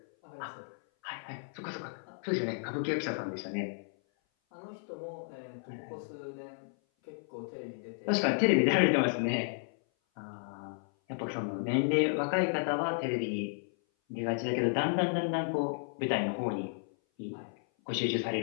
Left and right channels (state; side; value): silent; right; 56 dB below the other